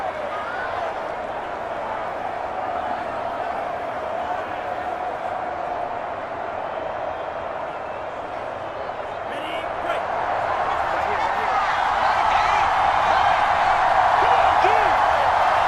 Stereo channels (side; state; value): both; identical; correlation 1.00